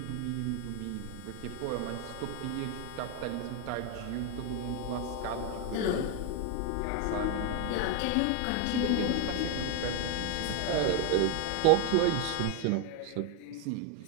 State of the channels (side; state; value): both; different; correlation 0.01